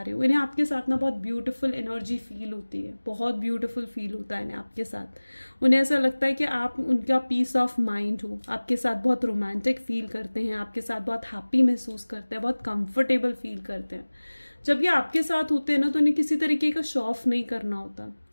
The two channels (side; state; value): both; inverted; correlation -1.00